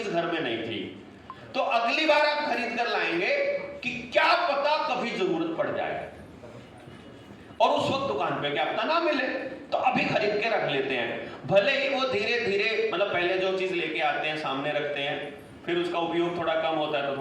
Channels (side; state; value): both; identical; correlation 1.00